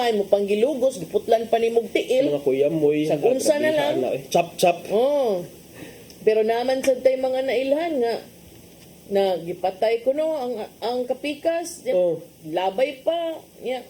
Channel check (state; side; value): identical; both; correlation 1.00